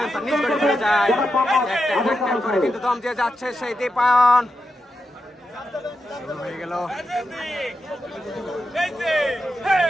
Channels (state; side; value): normal; both; correlation 0.88